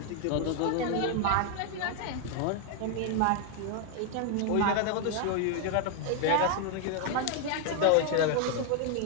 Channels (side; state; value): both; different; correlation 0.00